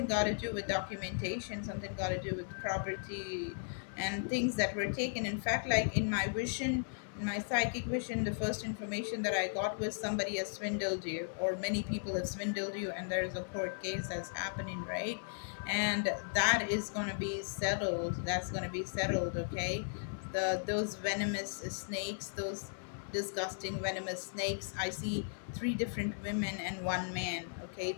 got to do with documentation, something got to do with property and things that were taken. In fact, like in my psychic vision, the first information that I got was somebody has swindled you, or many people have swindled you, and there's a court case that's happening, right? And that is going to be settled. That's going to be settled, okay? Those venomous snakes, those disgusting venomous snakes. I see three different women and one man. Okay,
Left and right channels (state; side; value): silent; right; 54 dB below the other